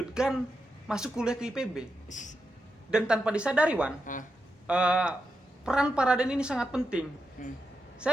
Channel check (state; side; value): normal; both; correlation 0.87